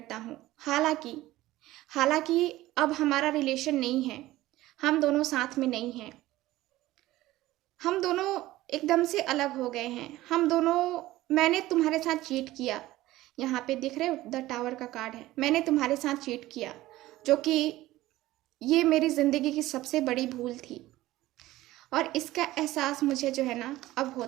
हूँ। हालांकि अब हमारा रिलेशन नहीं है, हम दोनों साथ में नहीं हैं, हम दोनों एकदम से अलग हो गए हैं, हम दोनों, मैंने तुम्हारे साथ चीट किया, यहाँ पे दिख रहे हो द टावर का कार्ड है, मैंने तुम्हारे साथ चीट किया, जो कि ये मेरी ज़िंदगी की सबसे बड़ी भूल थी और इसका एहसास मुझे जो है ना अब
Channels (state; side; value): quieter; left; 16.6 dB